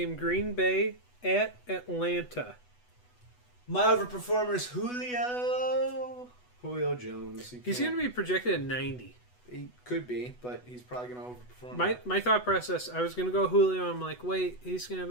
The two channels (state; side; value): late; right; 8.1 ms